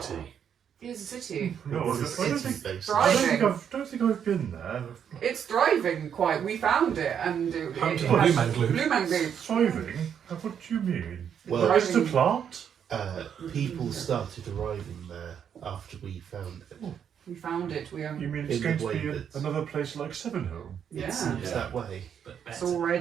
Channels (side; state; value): left; quieter; 8.2 dB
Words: It's a city. No, It's a I don't city think, based. Right. don't think I've been there. It's thriving quite. We found it and it Home to has- Blue Man Glue. Blue Man Glue. Thriving? What do you mean? Well, Just a plant? people started arriving there after we found it. We found it. We You mean it's In going the to be way that- another place like Sevenhome? It yeah. seems Yeah. that way. But It's better.